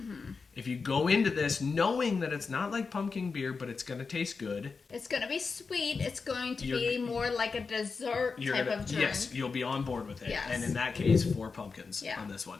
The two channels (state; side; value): quieter; right; 4.8 dB